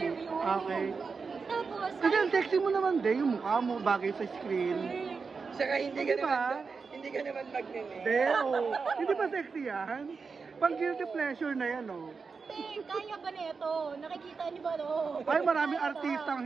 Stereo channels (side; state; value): left; quieter; 5.0 dB